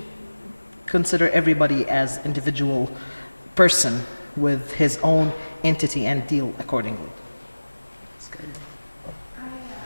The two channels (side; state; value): both; inverted; correlation -1.00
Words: consider everybody as individual person with his own entity and deal accordingly.